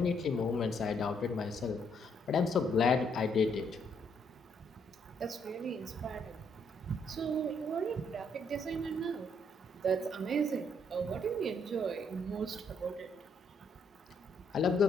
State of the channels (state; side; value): normal; both; correlation 0.71